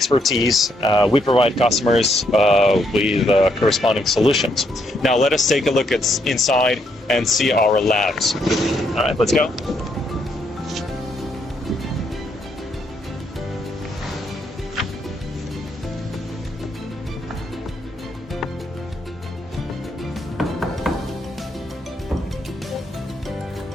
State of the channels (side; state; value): both; normal; correlation 0.74